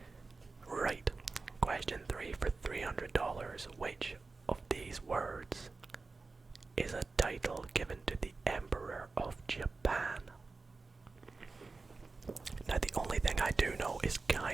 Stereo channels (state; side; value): quieter; left; 3.9 dB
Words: Right. Question 3 for $300. Which of these words is a title given to the Emperor of Japan? Now, the only thing I do know is